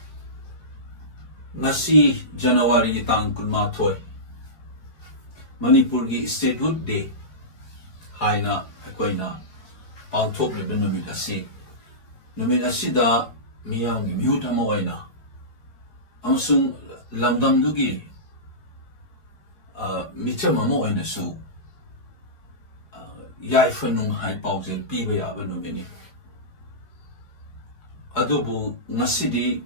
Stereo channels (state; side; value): late; right; 4.8 ms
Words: Ngasi January tang kunma thoy. Manipur gi Statehood Day. Haina akoina pangthok le numit asi. Numit asida miyang gi mihut ama oina. Amasung lamdam dugi micham ama oina su. Yai fanung hai paujel piba yaba numini. Adubu ngasidi